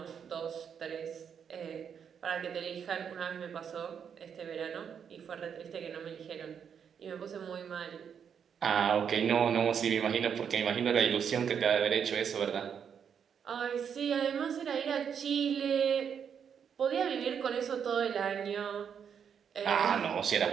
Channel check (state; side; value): quieter; left; 7.5 dB